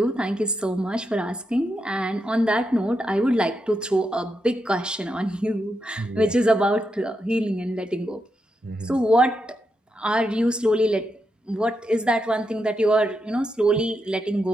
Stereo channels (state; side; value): normal; both; correlation 0.84